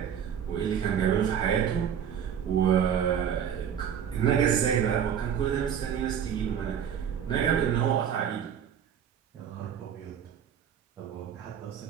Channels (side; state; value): left; quieter; 8.5 dB